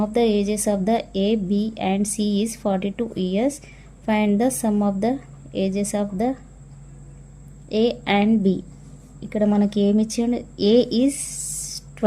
of the ages of the A, B and C is 42 years. Find the sum of the ages of the A and B. ఇక్కడ మనకి ఏమి ఇచ్చిండు? A is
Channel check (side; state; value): both; identical; correlation 1.00